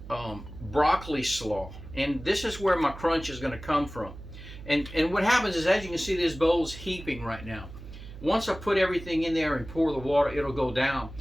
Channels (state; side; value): noise; right; hum, 14 dB below the sound